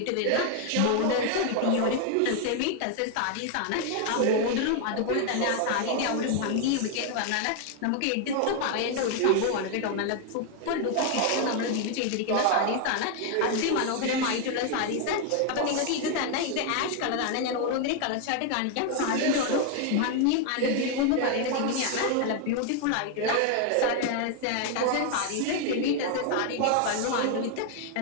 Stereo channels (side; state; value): both; different; correlation 0.00